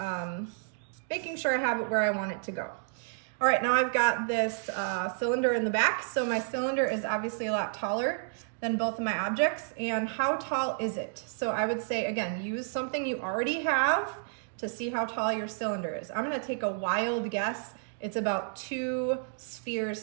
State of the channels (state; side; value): silent; left; digital silence